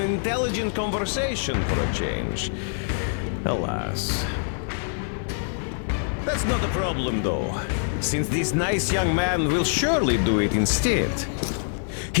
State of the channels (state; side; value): silent; right; 56 dB below the other